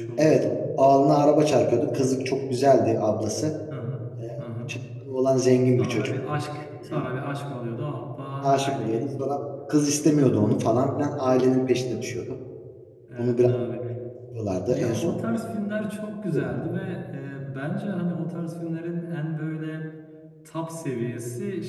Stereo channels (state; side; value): identical; both; correlation 1.00